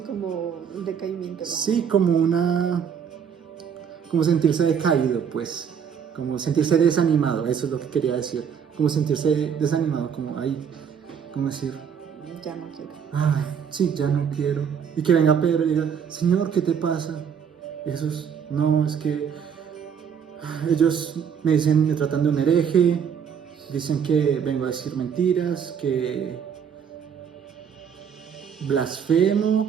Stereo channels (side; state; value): left; quieter; 7.4 dB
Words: como un decaimiento. Sí, como sentirse decaído, pues. Como sentirse desanimado, eso es lo que quería decir. Como sentirse desanimado, como ahí, ¿cómo decir? Ya no quiero. Ay, sí, ya no quiero. Y que venga Pedro y diga, Señor, ¿qué te pasa? Y Jesús, no, es que ellos me tratan de un hereje, dicen que vengo a decir mentiras, que